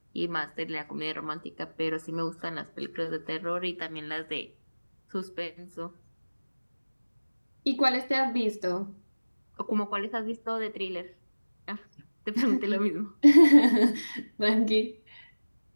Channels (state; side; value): inverted; both; correlation -1.00